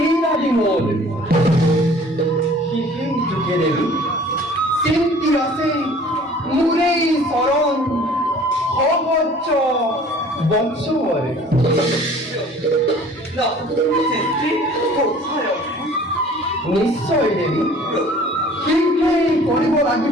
আদি মূল যুগে দেবী চিন্তি আছে মুরেই শরণ সহজ বংশবর নিশ্চয় দেবী শীঘ্রই কৰিব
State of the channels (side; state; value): both; normal; correlation 0.50